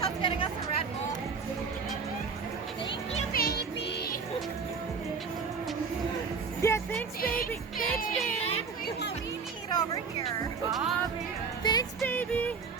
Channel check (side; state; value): left; quieter; 5.3 dB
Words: getting us a Red Bull. Thank you, baby. Yeah, thanks, baby. Exactly what we need over here. Thanks, baby.